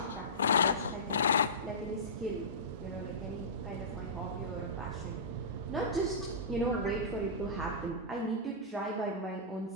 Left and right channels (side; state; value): both; normal; correlation -0.17